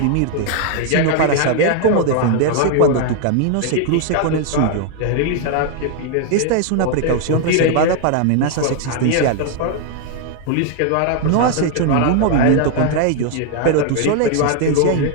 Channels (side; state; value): both; different; correlation 0.00